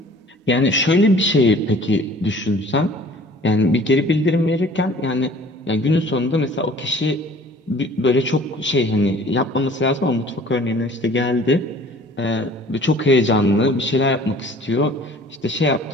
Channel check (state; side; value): normal; both; correlation 0.50